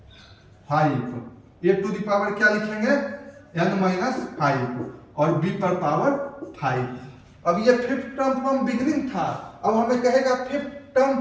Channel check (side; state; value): both; identical; correlation 1.00